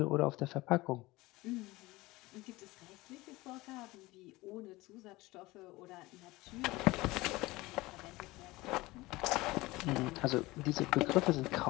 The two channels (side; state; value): right; quieter; 20.4 dB